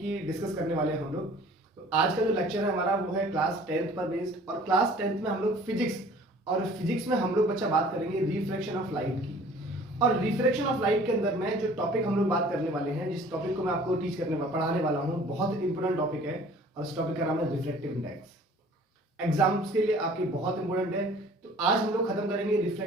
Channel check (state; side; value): normal; both; correlation 0.50